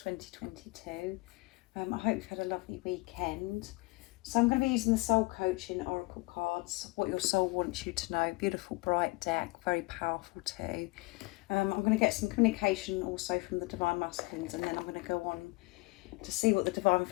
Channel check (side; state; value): right; quieter; 24.2 dB